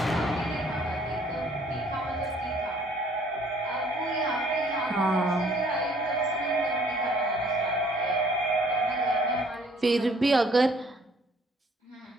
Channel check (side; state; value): both; normal; correlation 0.59